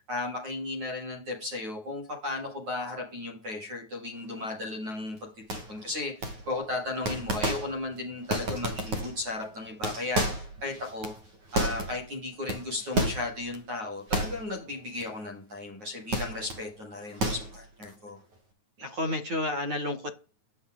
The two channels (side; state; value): left; late; 9.4 ms